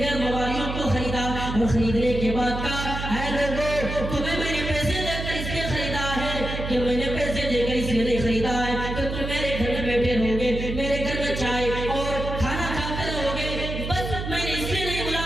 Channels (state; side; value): noise; right; hum, 5 dB below the sound